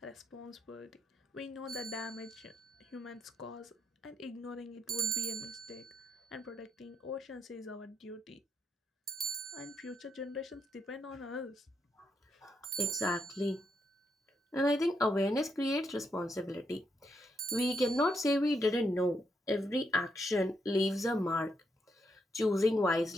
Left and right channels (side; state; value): both; normal; correlation 0.79